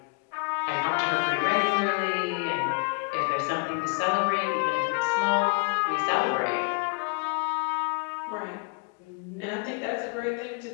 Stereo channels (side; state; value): right; quieter; 32.9 dB